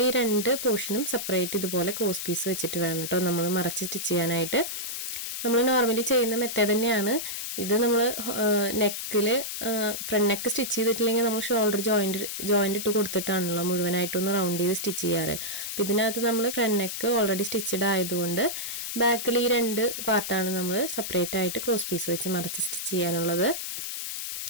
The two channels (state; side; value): noise; left; hiss, 5 dB below the sound